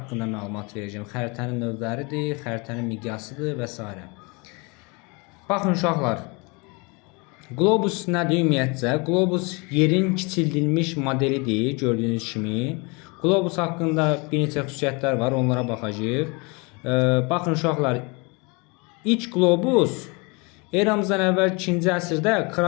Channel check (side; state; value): right; quieter; 29.2 dB